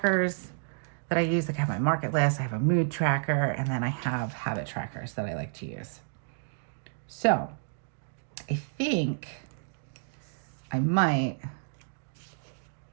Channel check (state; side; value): silent; left; digital silence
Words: that I use. Like I have my market list, I have a mood tracker, and then I have habit trackers that I like to use. So I think I might